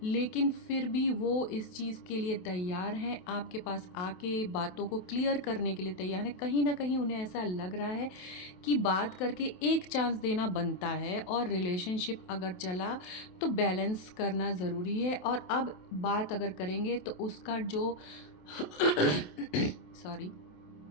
लेकिन फिर भी वो इस चीज़ के लिए तैयार हैं, आपके पास आके बातों को क्लियर करने के लिए तैयार हैं। कहीं ना कहीं उन्हें ऐसा लग रहा है कि बात करके एक चांस देना बनता है, और रिलेशनशिप अगर चला तो बैलेंस करना ज़रूरी है। और अब बात अगर करेंगे तो उसका जो सॉरी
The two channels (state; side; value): late; right; 27 ms